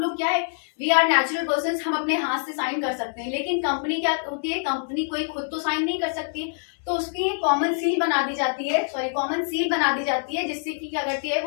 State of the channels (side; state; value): right; silent; 62 dB below the other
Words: लोग क्या है, वी आर नेचुरल पर्सन, हम अपने हाथ से साइन कर सकते हैं, लेकिन कंपनी क्या होती है, कंपनी कोई खुद तो साइन नहीं कर सकती, तो उसकी कॉमन सील बना दी जाती है, कॉमन सील बना दी जाती है, जिससे कि क्या करती है,